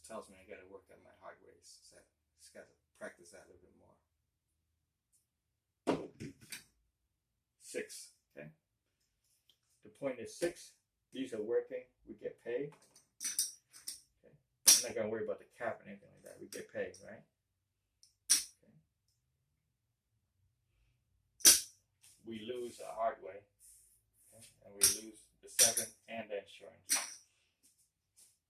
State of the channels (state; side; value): identical; both; correlation 1.00